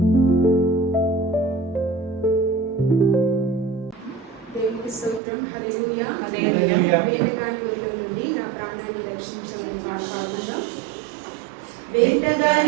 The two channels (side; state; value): left; drops out; at 5.2 s